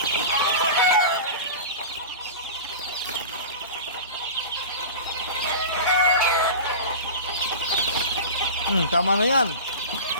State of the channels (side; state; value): both; inverted; correlation -0.31